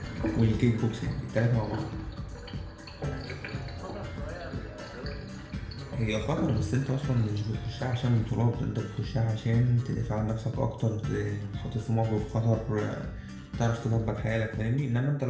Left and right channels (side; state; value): both; identical; correlation 1.00